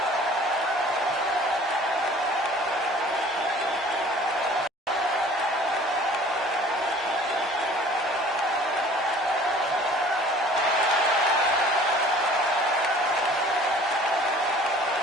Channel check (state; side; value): normal; both; correlation 0.49